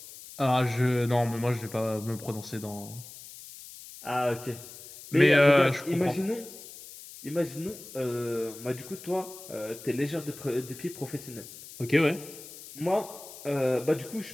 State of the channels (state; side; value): noise; left; hiss, 16 dB below the sound